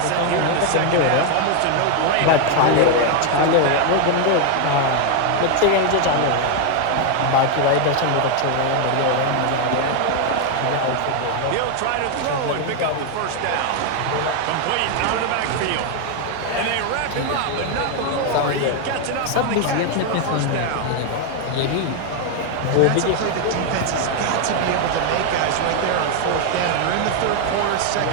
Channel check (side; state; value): both; different; correlation 0.01